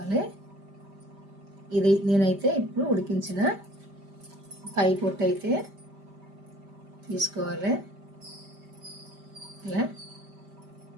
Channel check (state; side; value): late; left; 5.1 ms